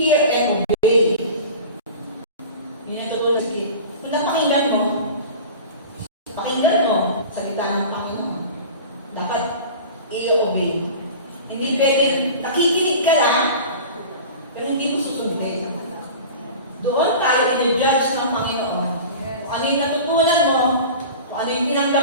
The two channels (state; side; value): inverted; both; correlation -0.36